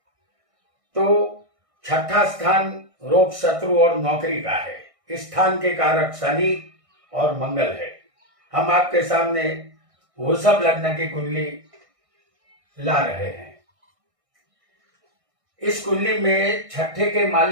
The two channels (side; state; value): left; late; 1.6 ms